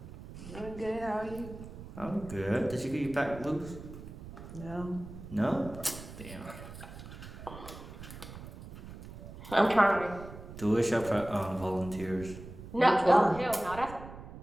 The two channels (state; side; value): noise; right; rumble, 13 dB below the sound